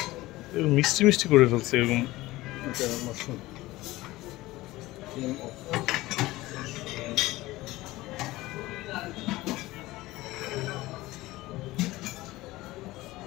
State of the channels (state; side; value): quieter; right; 18.5 dB